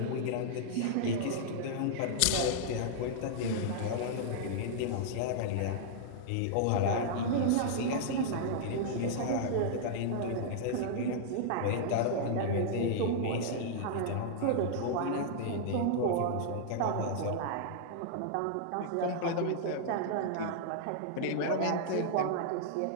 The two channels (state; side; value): different; both; correlation -0.01